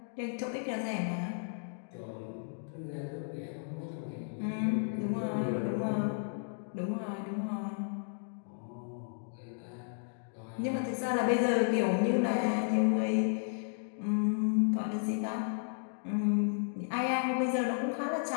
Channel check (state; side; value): silent; right; digital silence